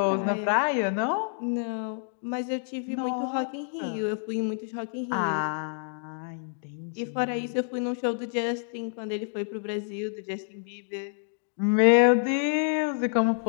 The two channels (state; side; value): silent; right; digital silence